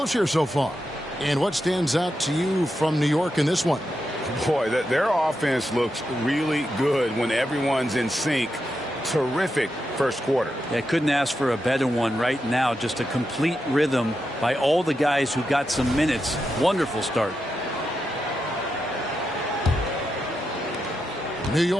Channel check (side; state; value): both; normal; correlation 0.87